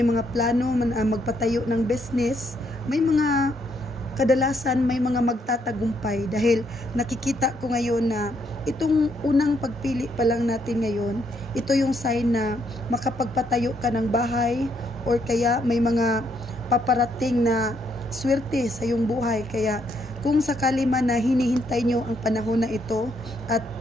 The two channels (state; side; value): normal; both; correlation 0.74